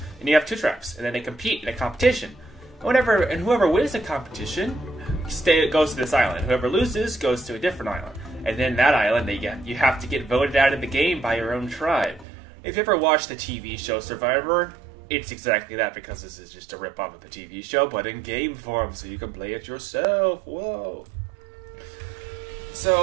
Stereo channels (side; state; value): left; drops out; at 12.2 s